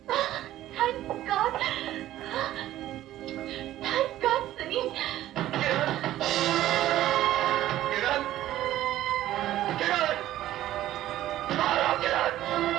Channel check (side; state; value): left; quieter; 13.9 dB